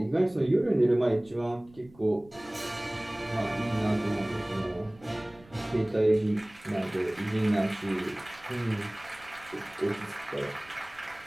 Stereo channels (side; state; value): right; noise; rumble, 25 dB below the sound